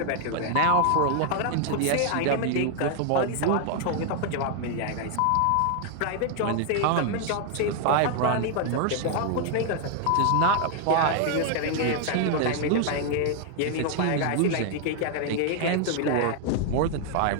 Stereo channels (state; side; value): different; both; correlation 0.00